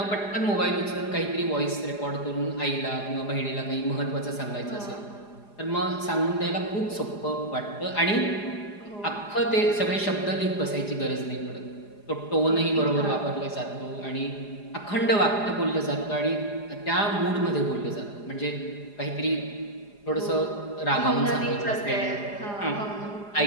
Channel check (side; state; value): right; late; 4.9 ms